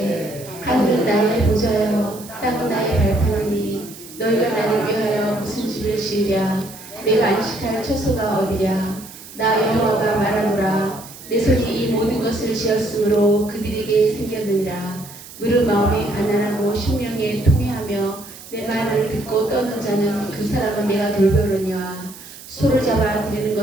하늘은 나의 보좌여 땅은 나의 발판이니 너희가 나를 위하여 무슨 집을 지으랴. 내가 안식할 처소가 어디랴. 나 여호와가 말하노라. 내 손이 이 모든 것을 지었으므로 그들에게 생겼느니라. 무릇 마음이 가난하고 심령에 통회하며 내 말을 듣고 떠는 자는 그 사람은 내가 돌보려니와. 소를 잡아 드리는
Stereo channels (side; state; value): right; noise; hiss, 17 dB below the sound